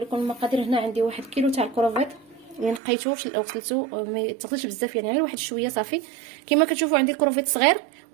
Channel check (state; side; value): drops out; left; at 2.8 s